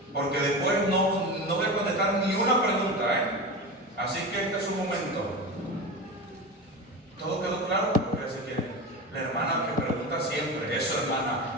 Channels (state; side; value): normal; both; correlation 0.26